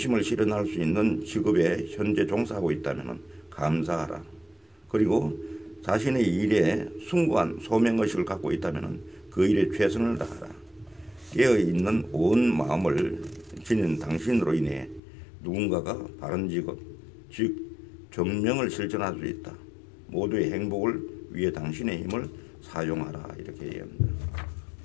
실현할 수 있는 직업에 현재 종사하고 있다면 감사하라. 그리고 자신의 일에 숭고한 소명의식을 갖고 있다면 그 일에 최선을 다하라. 깨어있는 온 마음을 지닌 당신으로 인해 누군가가 바른 직업, 즉 정명을 실천할 수 있다. 모두의 행복을 위해 당신의 힘을 사용하라. 이렇게 얘기합니다.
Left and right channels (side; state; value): right; drops out; at 15.0 s